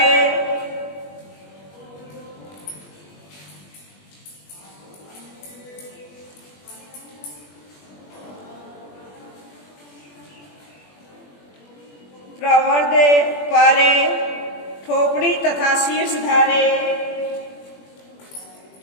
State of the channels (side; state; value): right; late; 21 ms